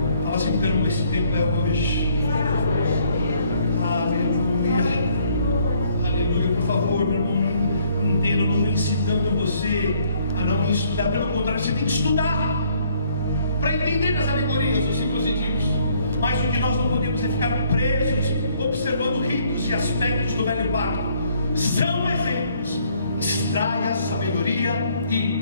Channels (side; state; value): both; inverted; correlation -0.64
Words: Fala assim, então, esse tempo é hoje. Aleluia. Aleluia. Por favor, meu irmão, não entenda, eu não estou incitando você a não estudar. Pelo contrário, você tem que estudar para entender as alegorias, os símbolos e tipos. Mas o que nós não podemos é ficar presos observando ritos e aspectos do velho pacto. São exemplos. Extraia a sabedoria